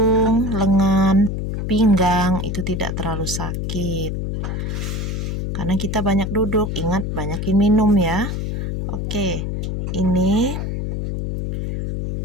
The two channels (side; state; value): left; noise; hum, 3 dB below the sound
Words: lengan, pinggang itu tidak terlalu sakit. Karena kita banyak duduk, ingat banyakin minum ya. Oke, ini